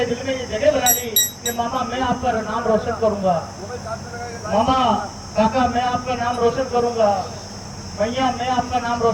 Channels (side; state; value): both; identical; correlation 1.00